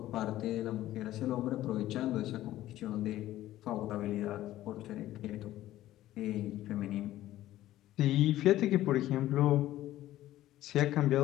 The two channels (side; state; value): right; quieter; 14.5 dB